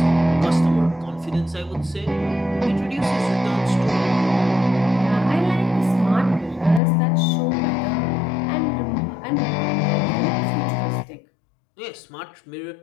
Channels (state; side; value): drops out; right; at 6.8 s